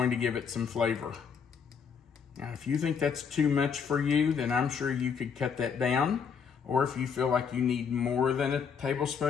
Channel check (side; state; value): right; quieter; 6.5 dB